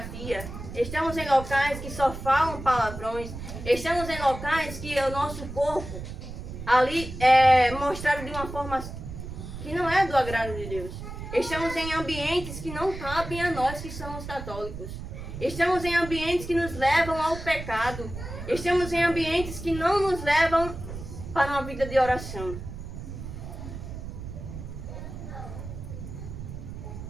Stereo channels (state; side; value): noise; right; rumble, 9 dB below the sound